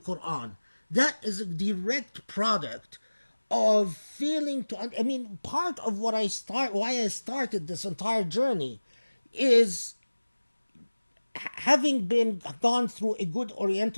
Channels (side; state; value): both; inverted; correlation -1.00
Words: That is a direct product of failing to... I mean, part of why I started this entire journey is having gone through a good